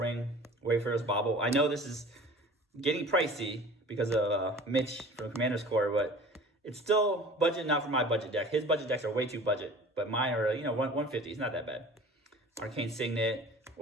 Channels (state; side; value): normal; both; correlation 0.43